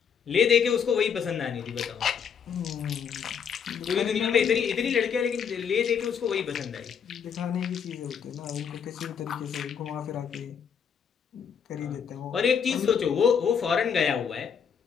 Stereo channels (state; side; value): quieter; right; 7.2 dB